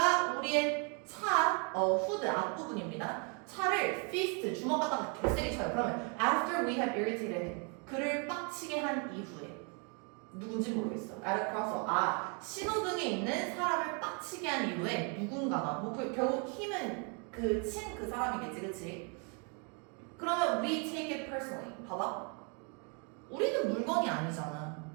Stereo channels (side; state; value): left; quieter; 36.4 dB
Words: 우리의 차, 후드 앞부분입니다. 차를 fist, 주먹 갖다가 개세게 쳐요. 그러면 after we have irritated him, 그를 빡치게 한 이후에 누군지 모르겠어. at a crosswalk. 신호등에 있는 사람을 빡치게 한 이후에 누군가가 결국 힘은 친 그 사람이겠지, 그치? 그러면 we take it personally. 봐봐. 우리는 물건이 아니잖아.